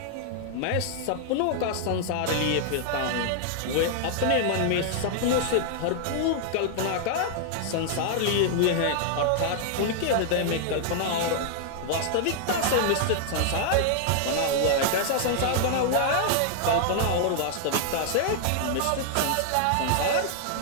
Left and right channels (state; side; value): different; both; correlation -0.01